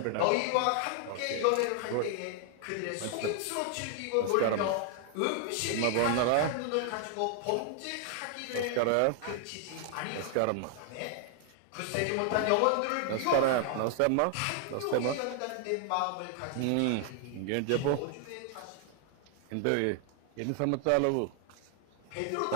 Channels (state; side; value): different; both; correlation 0.00